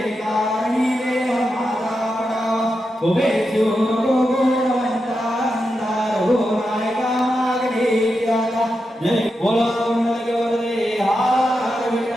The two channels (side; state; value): both; normal; correlation 0.87